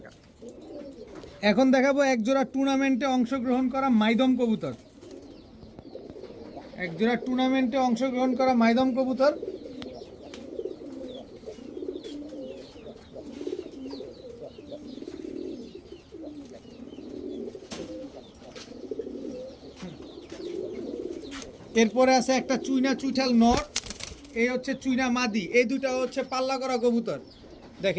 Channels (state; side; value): identical; both; correlation 1.00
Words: এখন দেখাবো এক জোড়া টুর্নামেন্টে অংশগ্রহণ করা মাইদম কবুতর, এক জোড়া টুর্নামেন্টে অংশগ্রহণ করা মাইদম কবুতর। এরপরে আছে একটা চুইনা চুইঠাল নর, এই হচ্ছে চুইনা মাদি। এই দুটা হচ্ছে পাল্লা করা কবুতর,